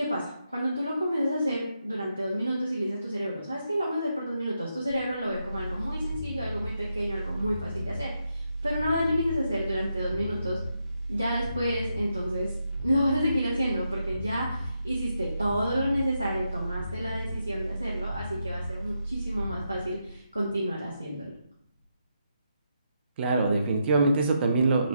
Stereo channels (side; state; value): both; inverted; correlation -0.83